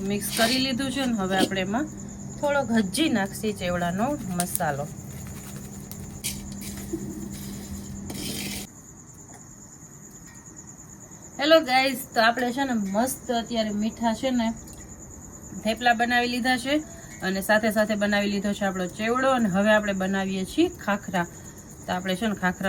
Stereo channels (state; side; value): identical; both; correlation 1.00